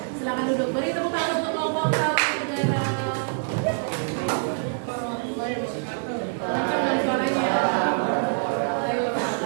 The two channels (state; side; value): silent; left; 62 dB below the other